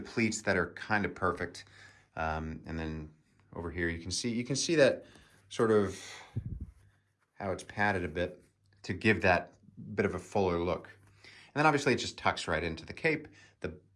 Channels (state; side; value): identical; both; correlation 1.00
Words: that are kind of perfect. And then over here, you can see that sort of how it's padded a bit to give that bit of a fuller look. And then obviously it just tucks right into the cape.